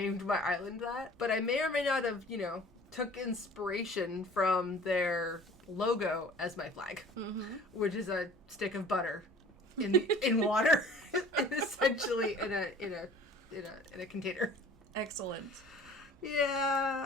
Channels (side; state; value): both; normal; correlation 0.47